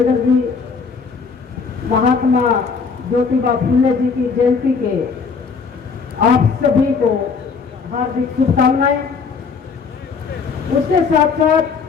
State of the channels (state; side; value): quieter; right; 5.3 dB